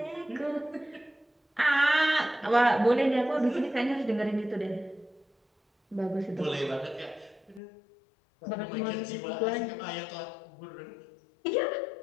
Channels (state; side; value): drops out; right; at 7.6 s